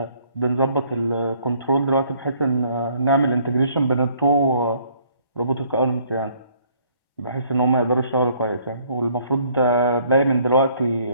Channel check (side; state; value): right; late; 1.1 ms